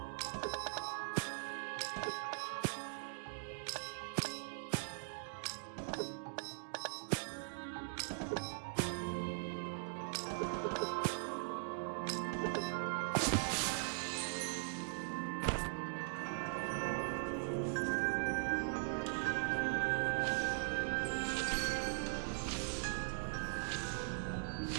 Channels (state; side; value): silent; left; digital silence